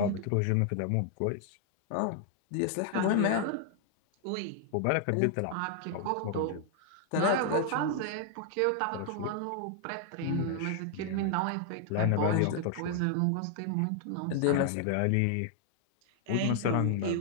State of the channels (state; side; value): different; both; correlation 0.00